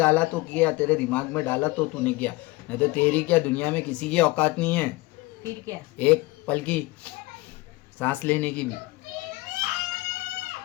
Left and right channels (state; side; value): quieter; right; 21.5 dB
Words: तो किया, तेरे दिमाग में डाला तो तूने किया, नहीं तो तेरी क्या दुनिया में किसी की औकात नहीं है फिर क्या। एक पल की सांस लेने की भी।